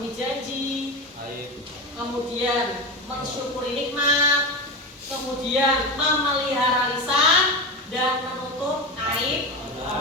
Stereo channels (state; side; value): normal; both; correlation 0.20